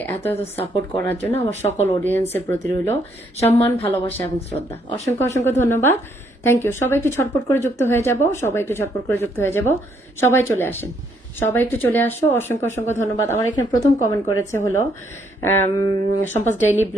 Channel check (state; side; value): normal; both; correlation 0.71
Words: এত এত সাপোর্ট করার জন্য আমার সকল অডিয়েন্সের প্রতি রইল সম্মান, ভালোবাসা এবং শ্রদ্ধা। অসংখ্য অসংখ্য ধন্যবাদ। Thank you. সবাই একটু ছটপট করে যুক্ত হয়ে যাব, সবাই একটু ছটপট করে যুক্ত হয়ে যাব। সবাই চলে আসেন, সবাই একটু চলে আসো। অসংখ্য অসংখ্য ধন্যবাদ। আমার এখানে প্রথম কমেন্ট করেছে হলো সম্পাস ডেইলি